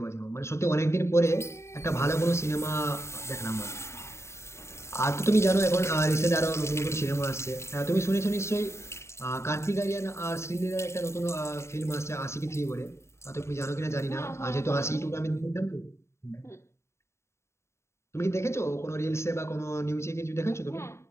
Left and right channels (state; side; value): late; right; 0.13 ms